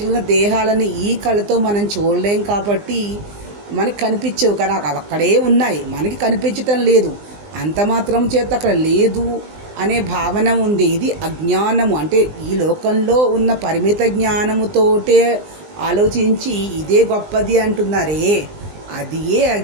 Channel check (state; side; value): late; left; 20 ms